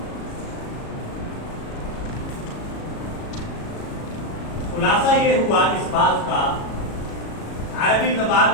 خلاصہ یہ ہوا اس بات کا عربی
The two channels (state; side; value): late; right; 37 ms